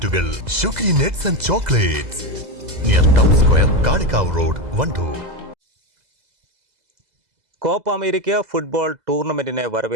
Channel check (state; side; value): late; left; 2.0 ms